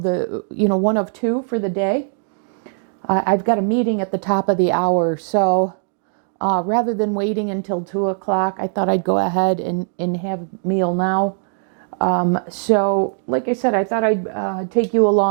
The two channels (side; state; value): left; silent; digital silence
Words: the one of 2 for the day. I've got a meeting at the top of the hour, so rather than waiting until 2 o'clock, I thought I'd go ahead and have a meal now. So like I said, I thought I'd take you